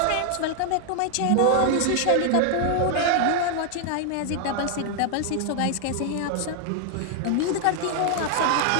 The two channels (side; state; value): both; different; correlation 0.00